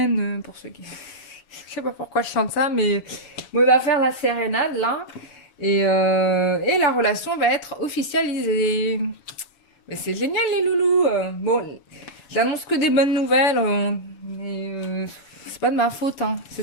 pour ceux qui... Je sais pas pourquoi je chante ça, mais bon, il va faire la sérénade là, et la relation va être officialisée. Mais c'est génial les loulous. Bon, j'annonce que des bonnes nouvelles, mais c'est pas de ma faute, hein.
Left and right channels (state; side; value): late; right; 7.2 ms